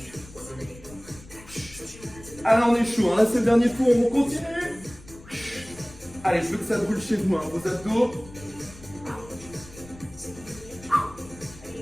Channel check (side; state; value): left; noise; rumble, 19 dB below the sound